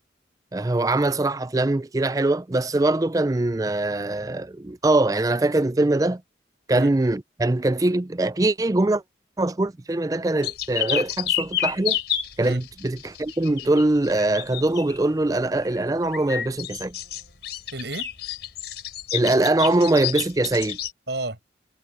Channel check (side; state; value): both; normal; correlation 0.68